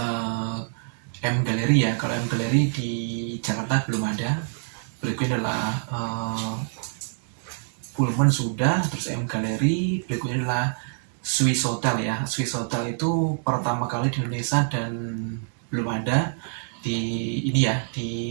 M Gallery ya, kalau M Gallery di Jakarta belum ada. Berikutnya adalah Pullman sudah, terus M Gallery. Berikutnya adalah Swiss Hotel ya. Swiss Hotel itu pertama kali di Indonesia dan belum ada di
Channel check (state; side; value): silent; left; 61 dB below the other